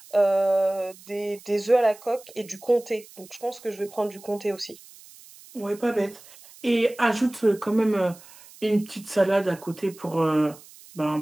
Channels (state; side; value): noise; right; hiss, 22 dB below the sound